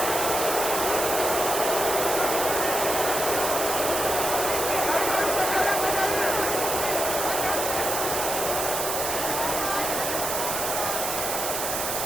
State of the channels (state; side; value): noise; right; hiss, 2 dB below the sound